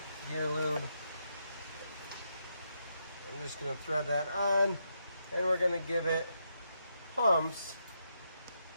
gear lube. I'm just gonna thread that on, and we're gonna give it pumps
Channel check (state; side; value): inverted; both; correlation -0.81